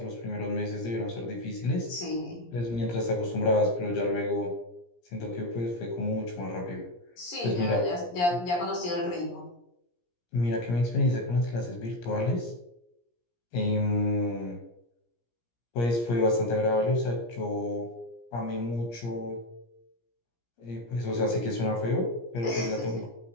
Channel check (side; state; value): right; late; 17 ms